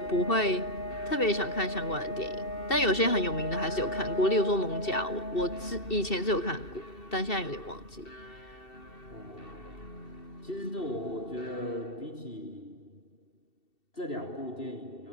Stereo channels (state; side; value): late; right; 2.7 ms